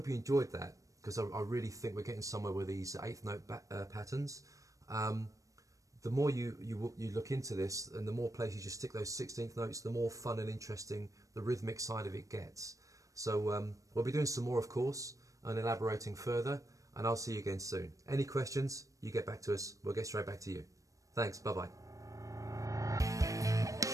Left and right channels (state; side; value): late; left; 0.16 ms